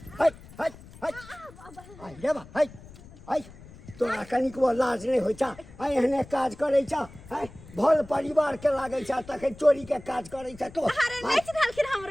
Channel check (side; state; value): left; noise; rumble, 19 dB below the sound